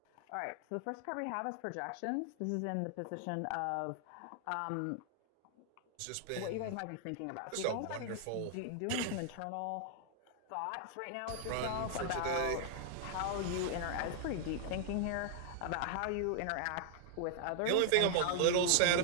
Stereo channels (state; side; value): different; both; correlation 0.00